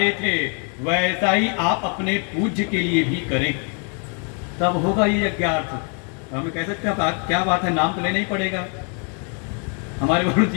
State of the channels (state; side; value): quieter; right; 39.9 dB